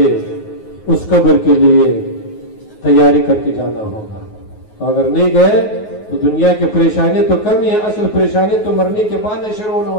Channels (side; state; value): right; late; 9.4 ms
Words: اس قبر کے لیے تیاری کر کے جانا ہوگا. تو اگر نہیں گئے تو دنیا کی پریشانی تو کم ہی ہے, اصل پریشانی تو مرنے کے بعد شروع ہونے